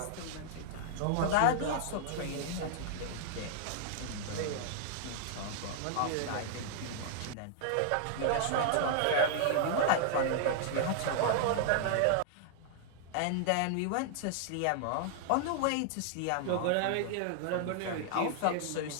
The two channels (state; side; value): different; both; correlation -0.01